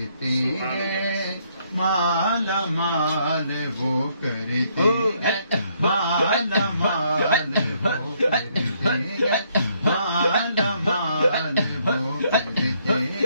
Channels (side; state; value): both; inverted; correlation -0.70